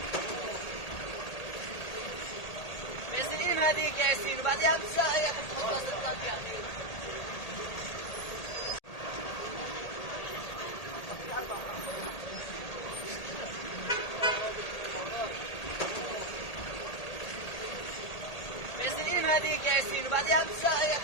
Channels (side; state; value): right; late; 1.8 ms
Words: ياسين هذيك يا ياسين وبعدها بساعة تحطها 16 يعني. ياسين هذيك يا ياسين وبعدها بساعة